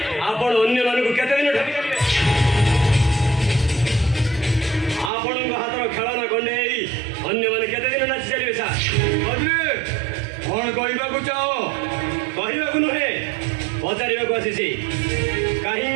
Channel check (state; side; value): drops out; left; at 5.1 s